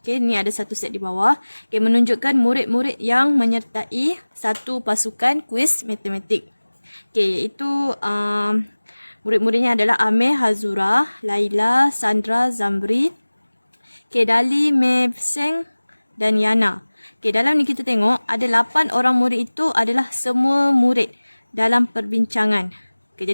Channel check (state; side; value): inverted; both; correlation -1.00